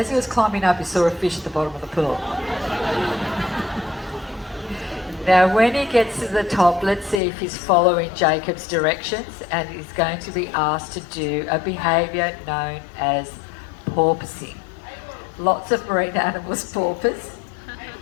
he was climbing up, he saw a fish at the bottom of the pool? Now when he gets to the top, let's see if he's following Jacob's directions, and he's going to be asked to do a behaviour known as porpoising. Lots of marine animals porpoise,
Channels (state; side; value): drops out; right; at 7.2 s